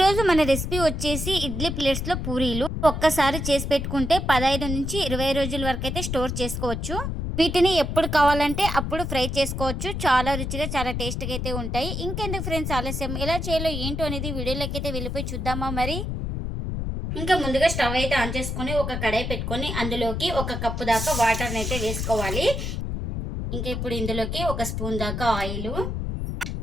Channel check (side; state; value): left; noise; rumble, 3 dB below the sound